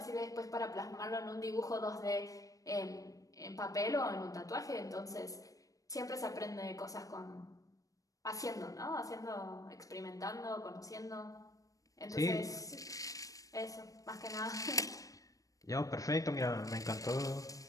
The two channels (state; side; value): late; right; 0.16 ms